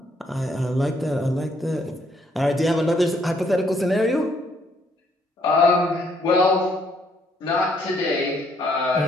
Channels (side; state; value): both; normal; correlation 0.69